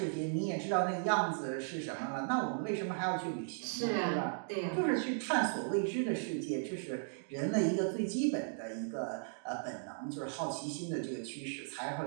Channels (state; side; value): silent; left; digital silence